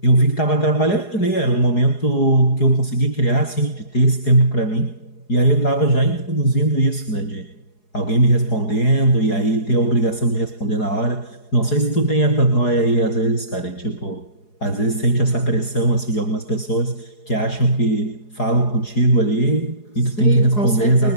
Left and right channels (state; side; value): late; right; 4.8 ms